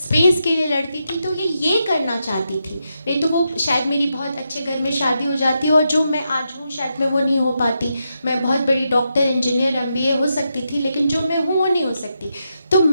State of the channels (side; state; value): both; inverted; correlation -0.84